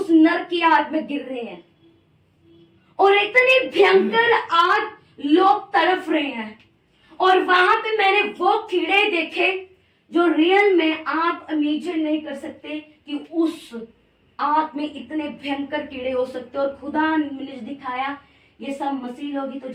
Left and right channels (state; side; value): identical; both; correlation 1.00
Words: नर की आग में गिर रहे हैं, और इतनी भयंकर आग, लोग तड़प रहे हैं। और वहां पे मैंने वो कीड़े देखे जो रियल में आप इमेजिन नहीं कर सकते कि उस आग में इतने भयंकर कीड़े हो सकते। और खुदा ने मुझे दिखाया ये सब मसीह लोग ही तो